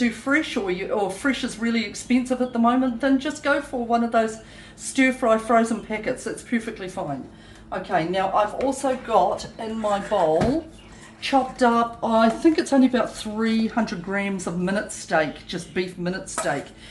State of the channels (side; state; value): both; identical; correlation 1.00